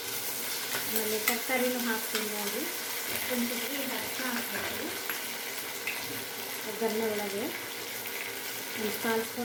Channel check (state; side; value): identical; both; correlation 1.00